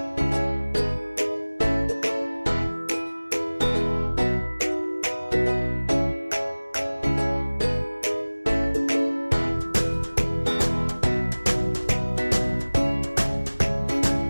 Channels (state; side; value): inverted; both; correlation -1.00